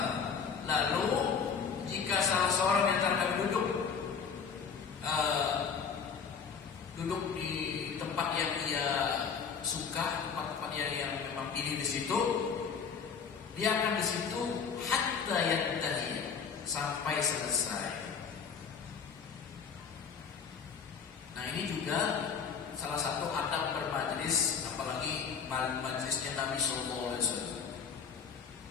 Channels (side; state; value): right; quieter; 6.4 dB